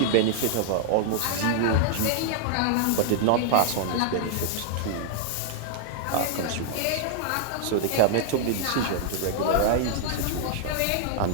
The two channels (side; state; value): both; different; correlation -0.01